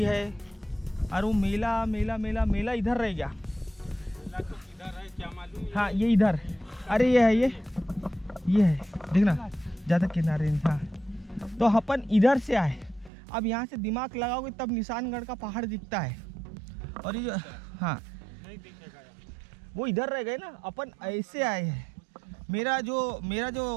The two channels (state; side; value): drops out; left; at 13.1 s